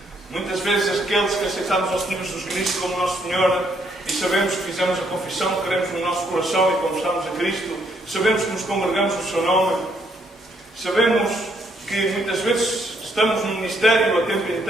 Muitas vezes aqueles que aceitamos ao Senhor Jesus Cristo como nosso Senhor e sabemos que fizemos a confissão que queremos no nosso coração e confessamos a Cristo, sabemos que nos congregamos no seu nome, sabemos que muitas vezes estamos no ministério a tempo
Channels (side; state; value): both; normal; correlation 0.71